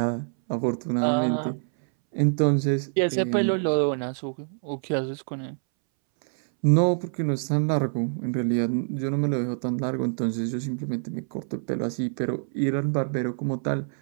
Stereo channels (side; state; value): left; silent; 61 dB below the other